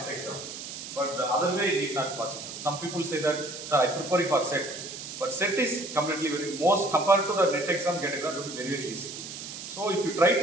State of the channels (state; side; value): noise; right; hiss, 10 dB below the sound